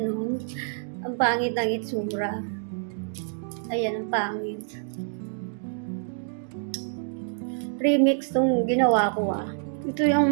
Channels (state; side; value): silent; left; 60 dB below the other